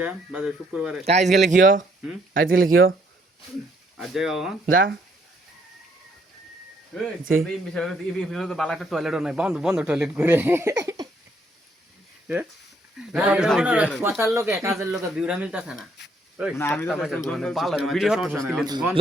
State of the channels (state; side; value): normal; both; correlation 0.68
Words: বাজার শুক্রবারে আজ গেলে কিও আজ গেলে কিও আজ যাই বাবা যা এই বিষয়ে তো বালা একটা টয়লেটও নাই বন্ধ বন্ধ টয়লেট করে কথার লোকে কাজের লোকে বিউরা মিলতাছে না না আমি তো ভিডিও